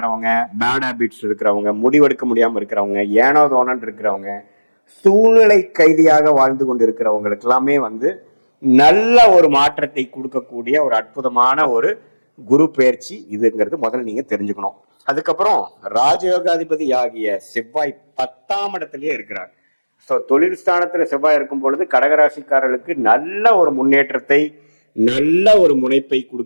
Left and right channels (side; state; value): both; inverted; correlation -1.00